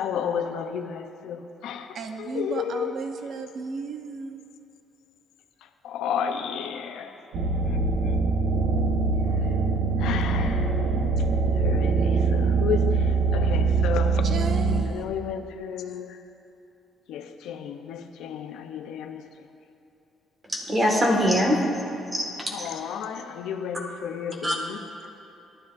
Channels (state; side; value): normal; both; correlation 0.57